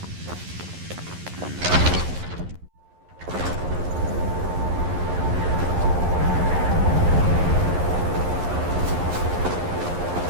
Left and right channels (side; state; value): left; late; 11 ms